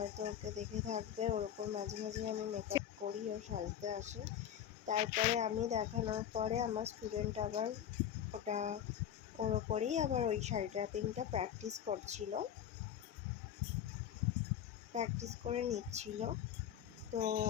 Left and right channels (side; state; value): right; quieter; 9.9 dB